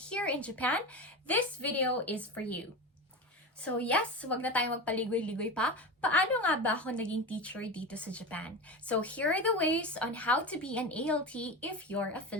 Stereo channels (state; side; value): normal; both; correlation 0.24